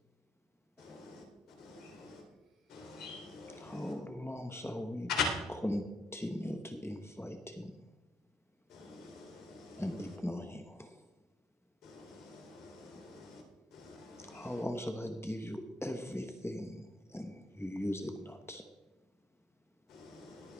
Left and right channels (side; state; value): both; normal; correlation 0.78